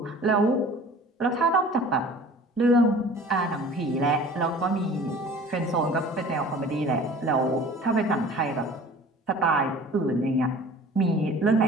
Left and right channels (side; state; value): both; normal; correlation 0.45